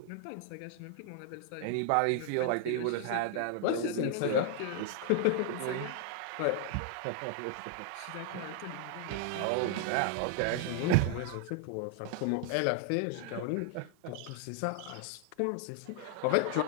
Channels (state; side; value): different; both; correlation 0.00